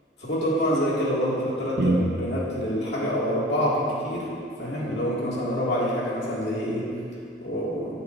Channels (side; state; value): both; normal; correlation 0.41